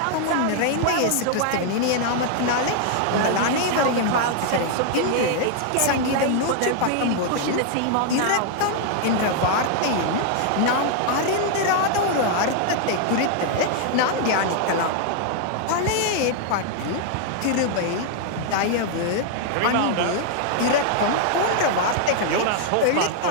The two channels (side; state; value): both; different; correlation 0.00